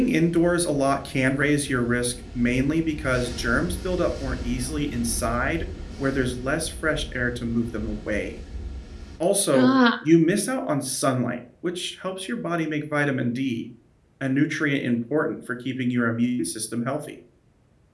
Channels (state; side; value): identical; both; correlation 1.00